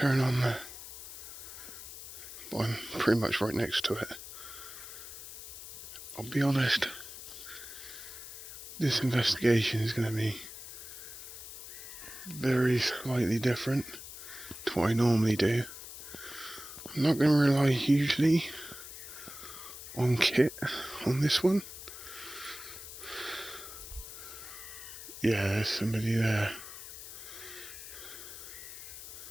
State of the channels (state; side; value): noise; left; hiss, 12 dB below the sound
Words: on the... Well, I'm pretty much right next to it. I'll be honest, this investigation is going to be very slightly different to what I normally do. I'm not going to rely hugely on kit on this one. Yeah, there's somebody there.